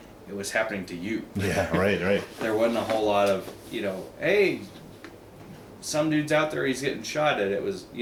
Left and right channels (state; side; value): identical; both; correlation 1.00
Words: it was happening to you. Yeah, right. There wasn't a whole lot of, hey, some dude's out there, he's getting shot at. It was,